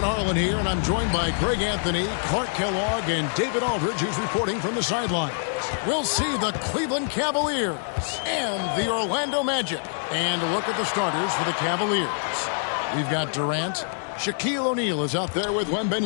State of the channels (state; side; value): silent; right; digital silence